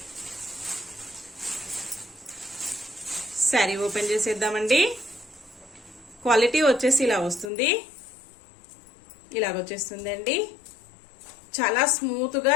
శారీ ఓపెన్ చేసేద్దామండి. క్వాలిటీ వచ్చేసి ఇలా వస్తుంది. ఇలాగొచ్చేస్తుందండి. చాలా స్మూత్ గా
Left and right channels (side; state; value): right; drops out; at 7.5 s